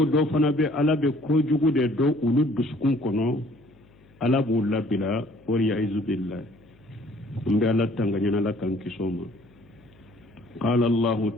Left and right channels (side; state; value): left; noise; hum, 28 dB below the sound